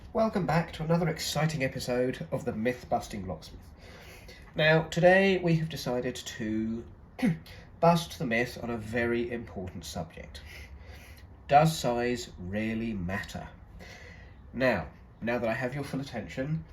Welcome back to another exciting episode of the Myth-Busting Locksmith. Now, today we have decided to bust the myth on a very important subject. Does size really matter? Now that I have your full attention,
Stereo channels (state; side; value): identical; both; correlation 1.00